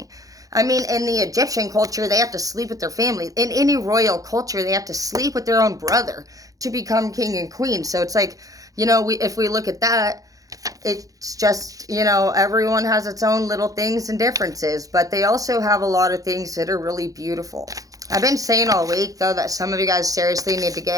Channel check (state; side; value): late; left; 0.17 ms